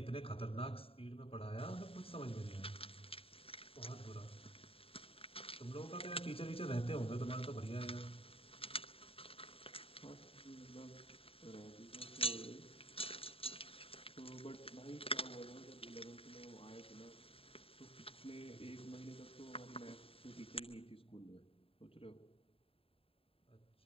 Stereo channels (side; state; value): right; late; 0.27 ms